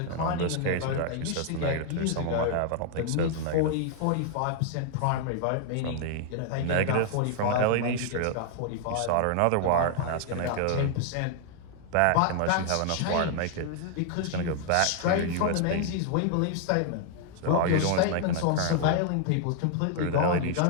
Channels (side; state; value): both; different; correlation 0.00